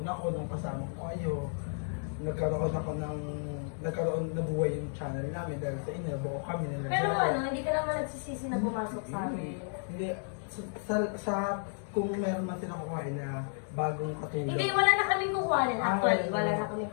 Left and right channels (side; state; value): right; silent; digital silence